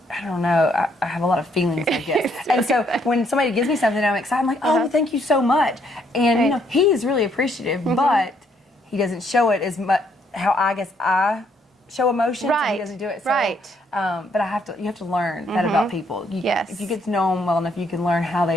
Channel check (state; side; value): normal; both; correlation 0.70